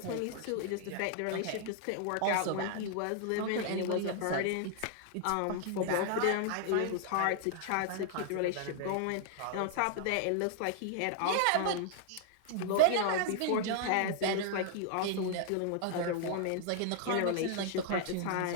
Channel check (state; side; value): different; both; correlation 0.00